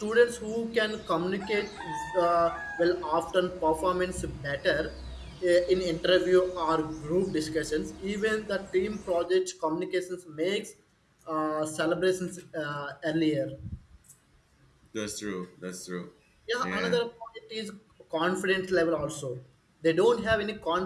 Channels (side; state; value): both; identical; correlation 1.00